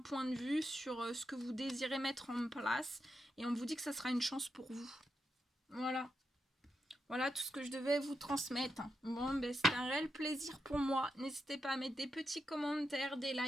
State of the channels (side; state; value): both; normal; correlation 0.85